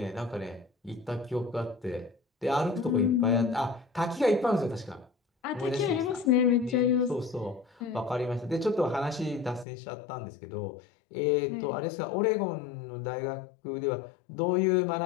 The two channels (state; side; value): drops out; right; at 9.7 s